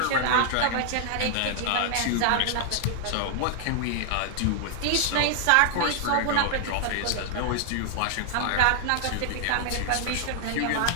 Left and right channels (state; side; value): different; both; correlation 0.00